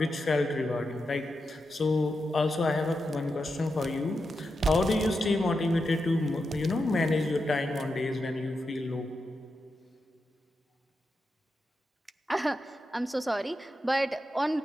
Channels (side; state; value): both; normal; correlation 0.88